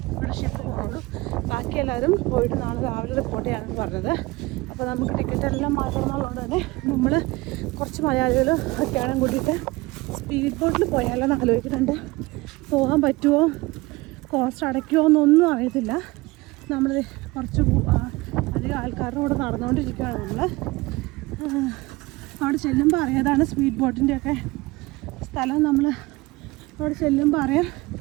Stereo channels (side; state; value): left; quieter; 21.8 dB